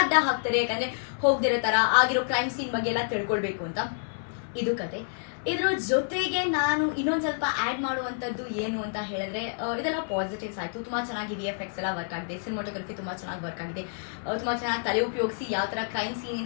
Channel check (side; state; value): right; silent; 57 dB below the other